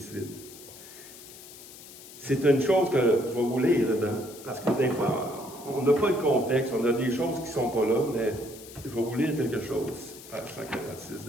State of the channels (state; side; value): noise; left; hiss, 17 dB below the sound